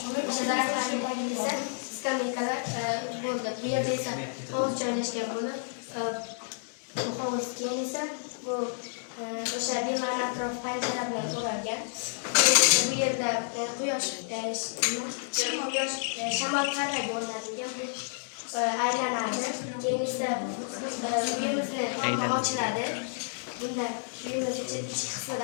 o'sha daraxtlarning tagida esa skameykalar bo'ldi. Bu yerda esa hovuz joylashgan bo'lib, bu hovuz keyin esa bu o'sha bema'ni atrof panjara bilan o'ralgan. Bu yerda quyosh shamol parraga o'rnatilgan. Bu aylanadi. Keyin esa uyimizni tomoni ochiladi. Bunda uyimiz ichki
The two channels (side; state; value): right; silent; digital silence